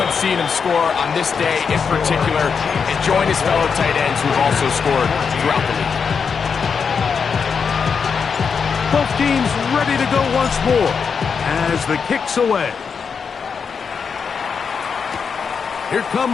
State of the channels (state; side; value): quieter; right; 6.0 dB